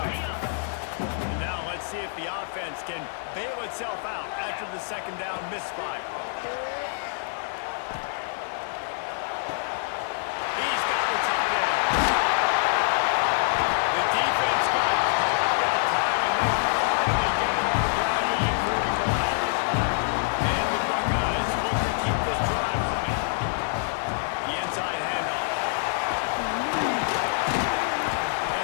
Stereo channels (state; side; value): silent; right; digital silence